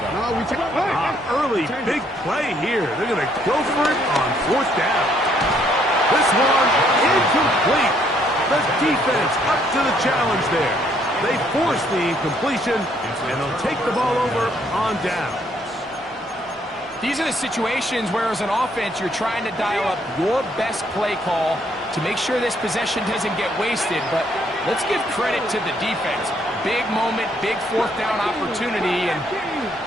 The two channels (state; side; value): normal; both; correlation 0.68